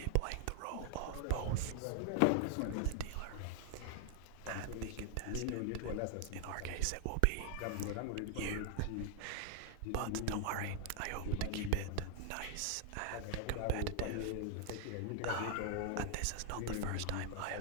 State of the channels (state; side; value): different; both; correlation 0.00